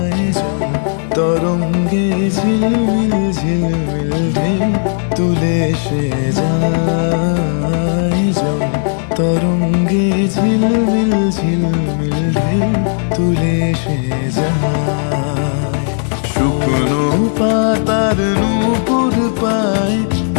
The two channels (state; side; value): silent; right; 70 dB below the other